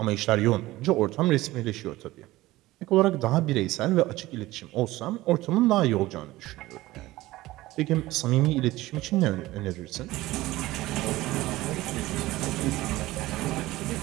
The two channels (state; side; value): quieter; left; 17.8 dB